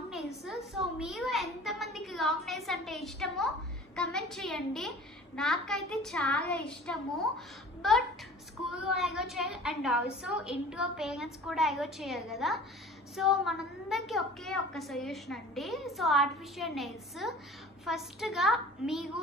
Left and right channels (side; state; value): both; normal; correlation 0.43